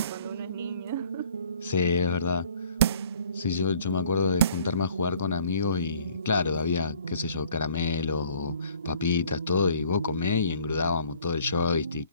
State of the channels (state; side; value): inverted; both; correlation -0.56